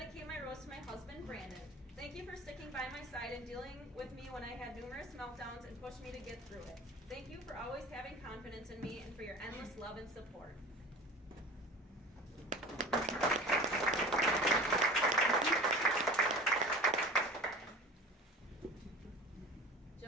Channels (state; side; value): normal; both; correlation 0.38